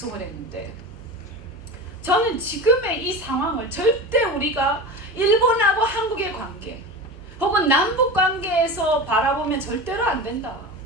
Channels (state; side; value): normal; both; correlation 0.28